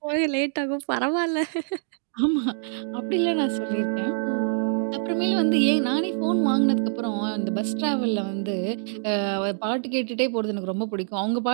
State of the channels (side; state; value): left; silent; digital silence